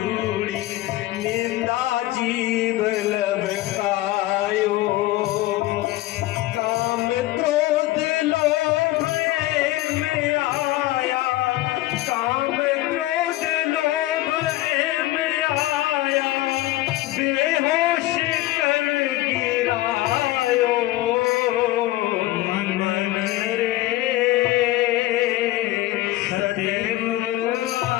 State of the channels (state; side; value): quieter; right; 17.0 dB